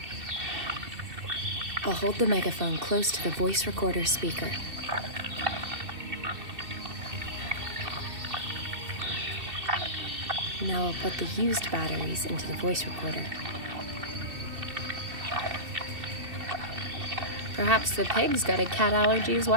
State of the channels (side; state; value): left; late; 2.7 ms